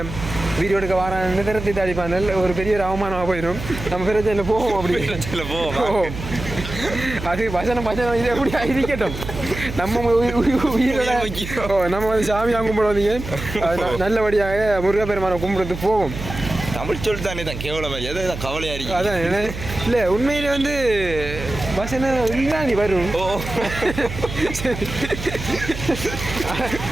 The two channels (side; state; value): right; noise; hum, 9 dB below the sound